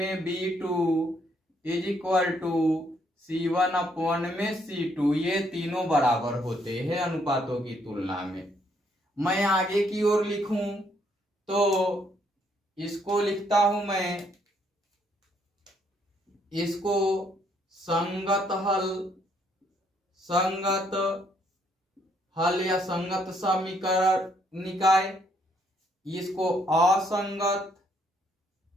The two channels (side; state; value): both; normal; correlation 0.70